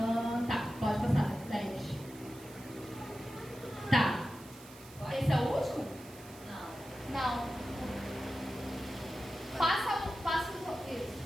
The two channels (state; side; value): noise; right; hiss, 20 dB below the sound